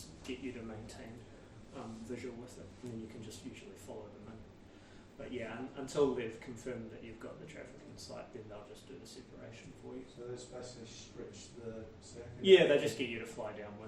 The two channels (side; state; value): both; identical; correlation 1.00